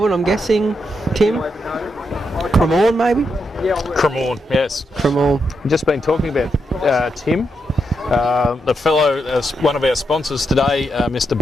I'm guessing. Tim? Cremorne, maybe? Cremorne, yes. Cremorne. We've just been talking about Tim. The fellow, one of our sponsors today, Mr.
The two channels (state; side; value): normal; both; correlation 0.83